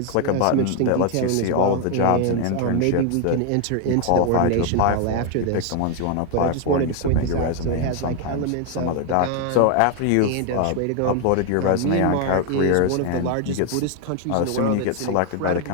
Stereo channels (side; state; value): both; different; correlation 0.01